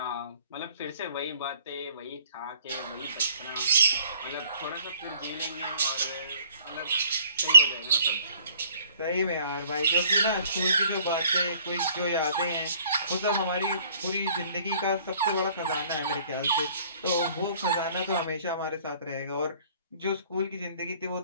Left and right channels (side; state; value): both; inverted; correlation -0.55